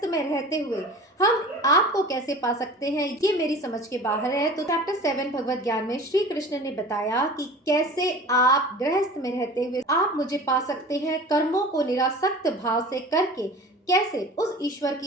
में रहते हुए हम आपको कैसे पा सकते हैं ये मेरी समझ के बाहर है। तो चैप्टर 7 भगवत ज्ञान में श्री कृष्ण ने बताया कि कैसे आप गृहस्थ में रहते हुए आप मुझे पा सकते हैं, कर्मों को निरासक्त भाव से करके कैसे उस ईश्वर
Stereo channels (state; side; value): normal; both; correlation 0.40